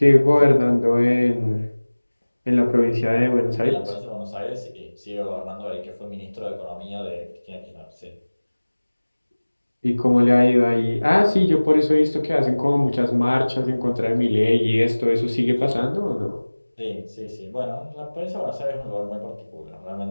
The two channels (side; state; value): both; inverted; correlation -1.00